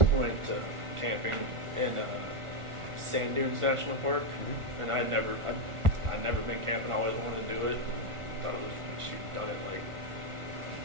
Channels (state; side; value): late; left; 1.4 ms